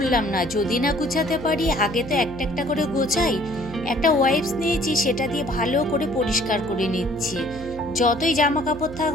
না, যদি না গুছাতে পারি। আগে তো একটা একটা করে গোছাই। একটা ওয়াইপস নিয়েছি, সেটা দিয়ে ভালো করে পরিষ্কার করে নিচ্ছি। যতই জামা কাপড়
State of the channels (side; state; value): right; noise; hum, 13 dB below the sound